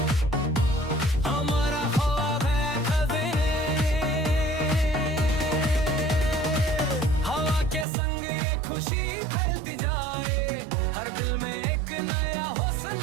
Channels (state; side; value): drops out; left; at 7.9 s